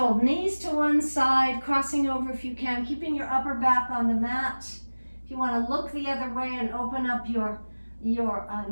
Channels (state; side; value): inverted; both; correlation -1.00